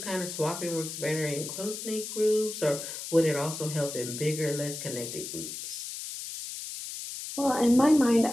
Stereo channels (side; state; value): left; noise; hiss, 8 dB below the sound